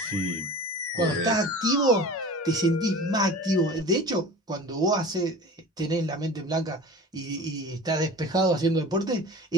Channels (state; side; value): normal; both; correlation 0.38